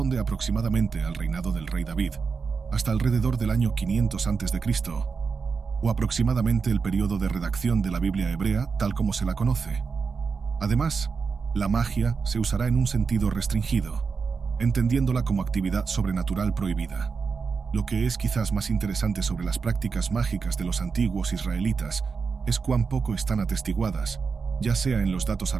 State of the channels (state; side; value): quieter; left; 5.2 dB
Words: aproximadamente al reinado del rey David, hasta alrededor del año 500 a.C., o aproximadamente el periodo de redacción de la Biblia hebrea tal como se la conoce. Además, la magia se usará en un sentido restringido, entendiéndola como actividad sobrenatural prohibida. Lo que es quizás más interesante sobre las prácticas mágicas de los antiguos israelitas es cuán poco están atestiguadas, ya sea en los datos